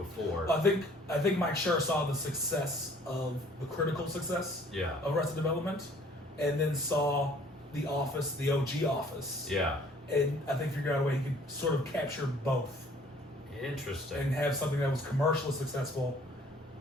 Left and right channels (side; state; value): both; normal; correlation 0.56